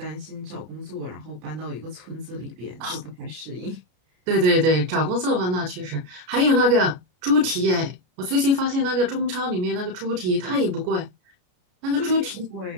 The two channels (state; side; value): late; left; 33 ms